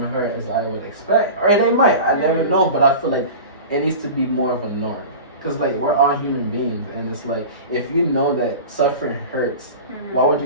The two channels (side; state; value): both; inverted; correlation -0.33